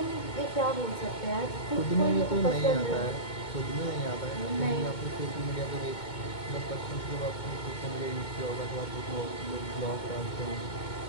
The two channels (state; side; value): late; right; 2.2 ms